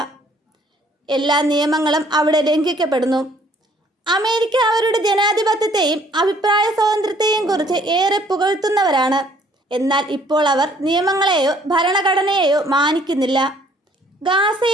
എല്ലാ നിയമങ്ങളും അവിടെ ലംഘിക്കപ്പെടുന്നു. അമേരിക്ക അവരുടെ ജനാധിപത്യത്തെയും അഭിപ്രായ സ്വാതന്ത്ര്യത്തെയും കുറിച്ച് ഏറെ പുകഴ്ത്തുന്നവരാണ്. എന്നാൽ ഇപ്പോൾ അവർ നിയമങ്ങളെയോ ഭരണഘടനയെയോ മാനിക്കുന്നില്ല.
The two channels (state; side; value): normal; both; correlation 0.61